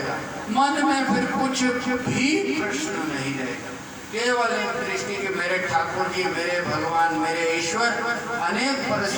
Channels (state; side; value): identical; both; correlation 1.00